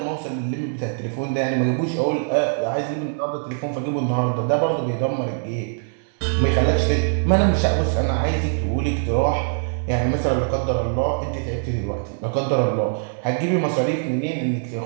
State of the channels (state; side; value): silent; left; digital silence